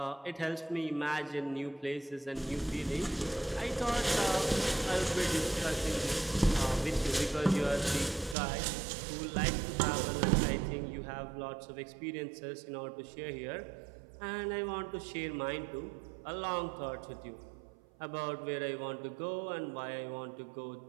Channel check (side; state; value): left; drops out; at 8.3 s